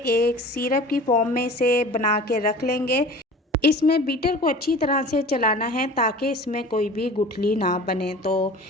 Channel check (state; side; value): normal; both; correlation 0.41